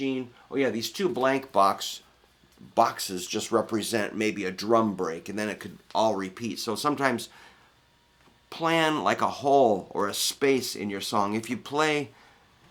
Oh yeah, these 2 blank boxes just represent maybe a drum break, and then it could all repeat. So sometimes plan like a hole or a space in your song. If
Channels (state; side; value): identical; both; correlation 1.00